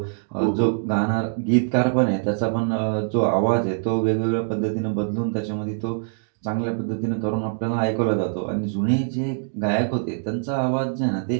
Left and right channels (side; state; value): left; silent; digital silence